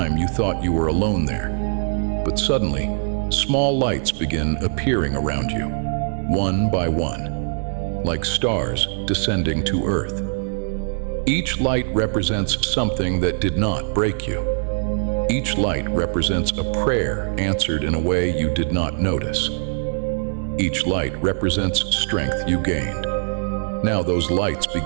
you thought you were alone there. But suddenly, small lights begin appearing around you, one by one, like stars descending to earth. Each light represents something that did not break you. Each light represents a prayer answered in a way you did not notice. Each light represents strength you gained. Now those lights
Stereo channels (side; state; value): left; silent; 64 dB below the other